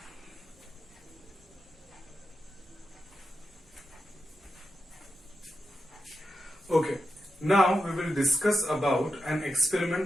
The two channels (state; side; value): normal; both; correlation 0.87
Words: Okay, now we will discuss about an experiment